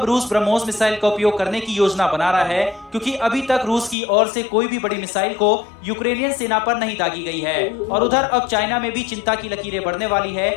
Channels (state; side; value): drops out; right; at 4.0 s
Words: रूस ब्रह्मोस मिसाइल का उपयोग करने की योजना बना रहा है? क्योंकि अभी तक रूस की ओर से कोई भी बड़ी मिसाइल को यूक्रेनियन सेना पर नहीं दागी गई है। और उधर अब चाइना में भी चिंता की लकीरें बढ़ने वाली है,